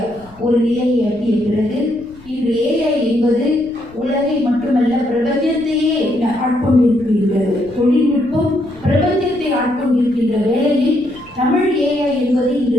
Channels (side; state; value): left; noise; rumble, 24 dB below the sound